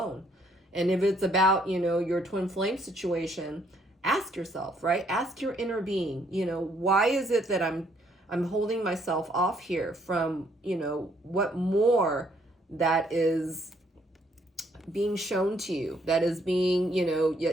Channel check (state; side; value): normal; both; correlation 0.68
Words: And if it's about, you know, your twin flame situation, ask yourself, right? Ask your inner being, you know, why is it that I'm holding myself off here from, you know, what more that is being shown to you, that is being, you know,